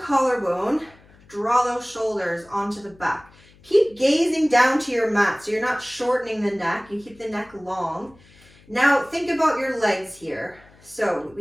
collarbone, draw those shoulders onto the back. Keep gazing down to your mat so you're not shortening the neck, you keep the neck long. Now think about your legs here. So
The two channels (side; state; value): left; noise; hum, 27 dB below the sound